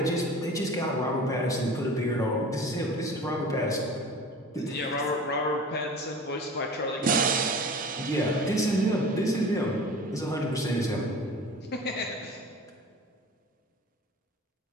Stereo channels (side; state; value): both; normal; correlation 0.39